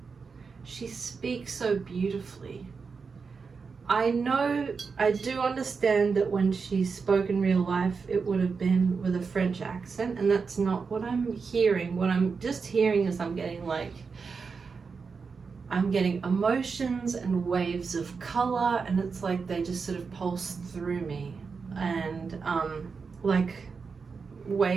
She speaks so beautifully. I do understand that when she spoke in real life, it would have been with a French accent, and that's not what I'm hearing. What I'm just hearing is I'm getting emotions and waves of color, and it's like they just sort of pulse through me, and like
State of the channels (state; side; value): quieter; left; 5.2 dB